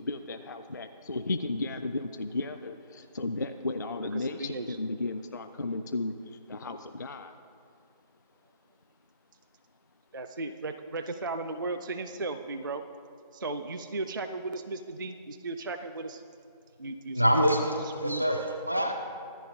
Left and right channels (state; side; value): inverted; both; correlation -0.71